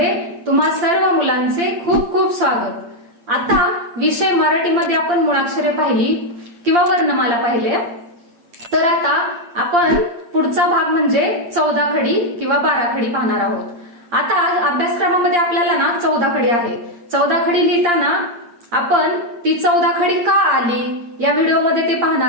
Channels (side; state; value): left; late; 8.6 ms